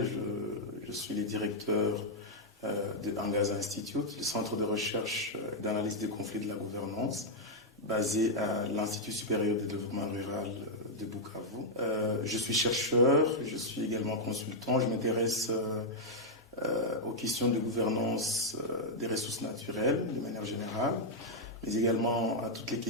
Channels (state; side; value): normal; both; correlation -0.04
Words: je suis le directeur de Angaza Institute, le centre de recherche et d'analyse des conflits de la gouvernance, basé à l'Institut supérieur de développement rural de Bukavu. Je suis chercheur, je suis également consultant, je m'intéresse aux questions de gouvernance des ressources naturelles de manière générale, mais également à toutes les